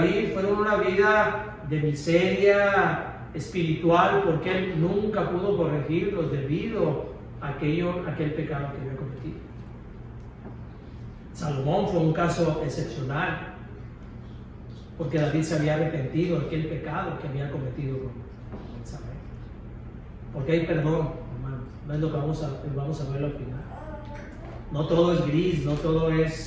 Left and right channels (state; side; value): identical; both; correlation 1.00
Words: fue una vida de miseria espiritual, porque él nunca pudo corregirlos debido a aquel pecado que había cometido. Salomón fue un caso excepcional, porque David se había arrepentido de aquel pecado que había cometido con Betsabé. Porque hay perdón, hermanos. No es lo que vamos a ver al final. No todo es gris, no todo